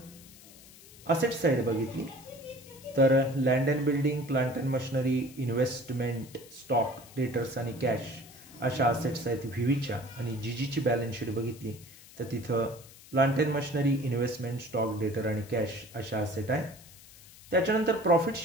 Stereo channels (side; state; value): left; noise; hiss, 21 dB below the sound